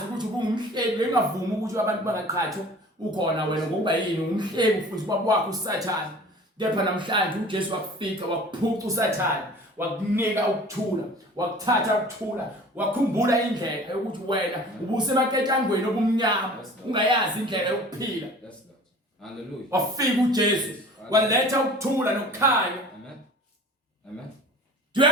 ukuthi ubungumhlebi engavumi ukuthi abantu bangaqhathwa ukhona wena ngokuba yini umhlebi futhi ubaba wakho uSathane. Kepha namhlanje uJesu wakufika wakuphuca uSathane wakunika ukuthula wakuthatha ukuthula wakhumbula indlela yokuthi wena ubusemaketshangweni obumnyama ungayazi indlela yokuphila. Yes, Lord. Hallelujah. Wafika uJesu waletha ukuthula nokukhanya. Amen. Amen. Do you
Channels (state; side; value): normal; both; correlation 0.44